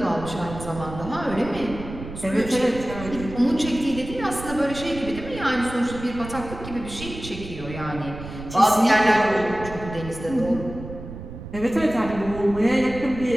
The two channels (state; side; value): noise; right; rumble, 11 dB below the sound